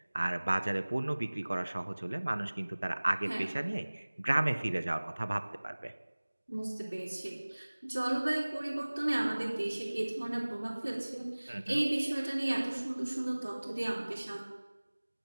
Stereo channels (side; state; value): both; inverted; correlation -1.00